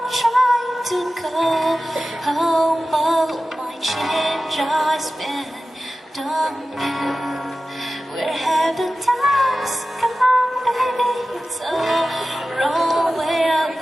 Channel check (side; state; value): both; normal; correlation 0.95